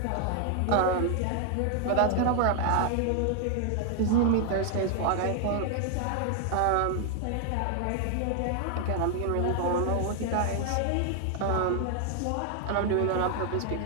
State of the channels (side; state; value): both; different; correlation 0.00